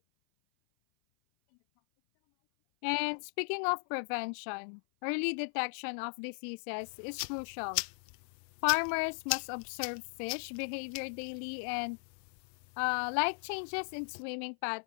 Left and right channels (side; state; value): right; silent; 53 dB below the other